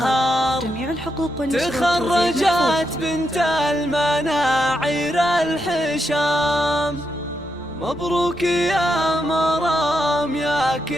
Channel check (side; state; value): left; noise; rumble, 27 dB below the sound